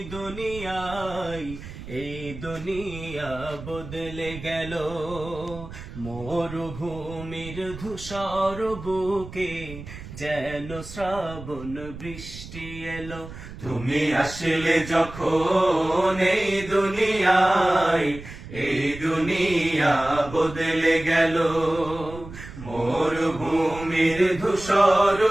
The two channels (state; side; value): noise; right; rumble, 13 dB below the sound